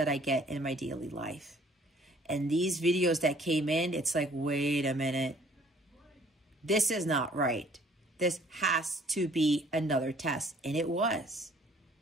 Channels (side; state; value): both; normal; correlation 0.57